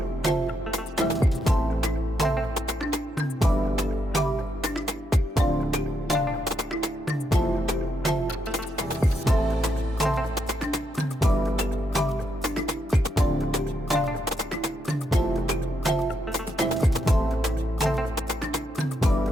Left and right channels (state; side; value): normal; both; correlation 0.80